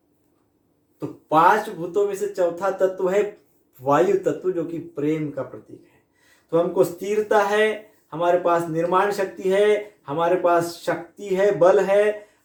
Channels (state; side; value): identical; both; correlation 1.00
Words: तो 5 भूतों में से चौथा तत्व है वायु तत्व, जो कि प्रेम का प्रतीक है। तो हमको स्थिरता है, हमारे पास निर्माण शक्ति है, हमारे पास शक्ति है, बल है,